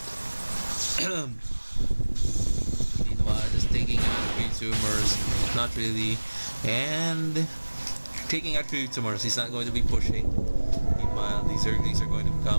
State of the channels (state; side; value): inverted; both; correlation -1.00